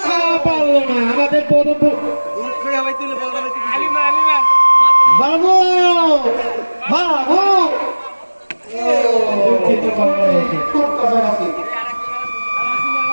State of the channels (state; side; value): inverted; both; correlation -1.00